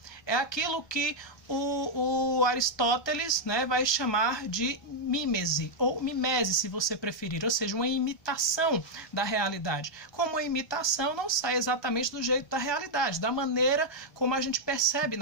É aquilo que o Aristóteles, né, vai chamar de mímese, ou mimese, se você preferir, ou seja, uma imitação da realidade. Como a imitação não sai exatamente do jeito da realidade, da maneira como a gente percebe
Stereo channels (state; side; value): late; right; 1.3 ms